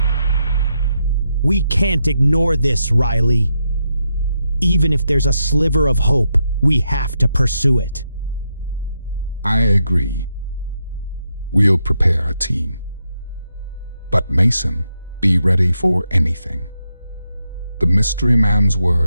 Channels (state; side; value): inverted; both; correlation -0.83